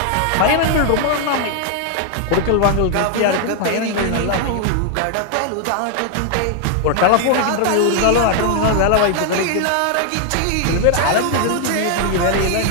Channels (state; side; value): different; both; correlation 0.00